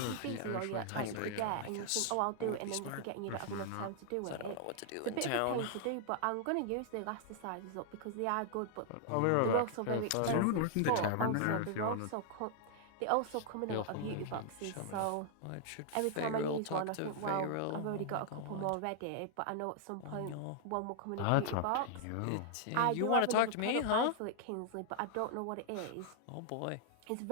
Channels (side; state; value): both; different; correlation -0.01